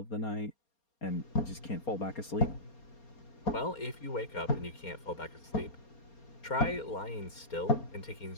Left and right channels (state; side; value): late; right; 4.3 ms